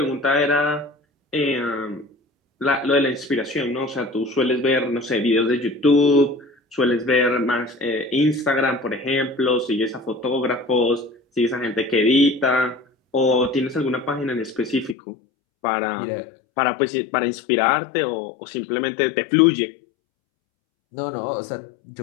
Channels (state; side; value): drops out; right; at 15.0 s